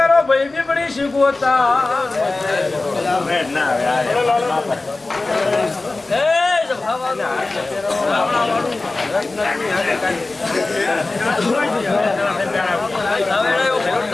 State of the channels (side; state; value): right; quieter; 3.3 dB